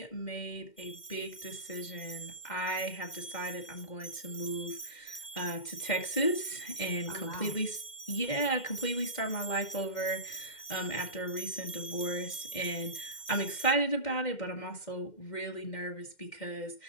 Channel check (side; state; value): right; late; 2.1 ms